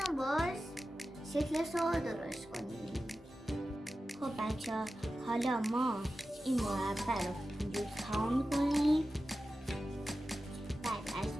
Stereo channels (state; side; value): normal; both; correlation 0.93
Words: و باز شکلش رو درست کنید. خب بچه‌ها حالا ما این مربع رو اینجور تمام کنیم. بعد از